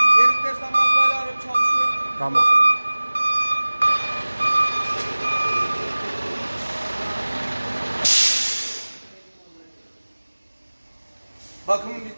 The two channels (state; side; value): inverted; both; correlation -1.00